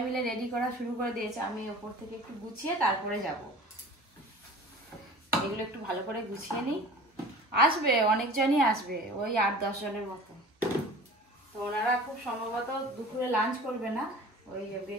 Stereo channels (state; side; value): normal; both; correlation 0.42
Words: মিলে রেডি করা শুরু করে দিয়েছে। আমি ওপর থেকে একটু গুছিয়ে তারপরে যাব। এগুলো একটু ভালো করে গুছিয়ে নিই। আসবে অনেকজনই আসবে, ওই 8-10 জনের মতো। তো ওনারা খুব সম্ভবত দুপুরে লাঞ্চ করবে না, ওই